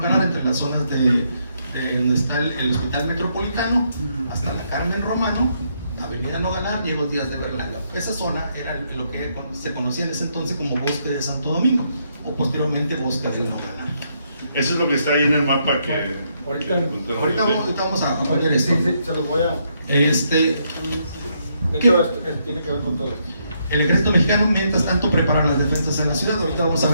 entre las zonas de donde está el Hospital Metropolitano, hasta la Carmen Romano, Avenida Nogalar, Diego Díaz de Berlanga. Esa zona era lo que se conocía en ese entonces como Bosque de Santo Domingo, o posteriormente Bosque de Nogalar. Eso es lo que está ahí en el mapa que... Ahorita vamos a poner esto. Sí, se los voy a... tiene que ver con todo esto. El ejército mexicano, mientras tanto, prepara las defensas en la ciudad. Ahorita vamos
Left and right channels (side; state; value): both; inverted; correlation -0.76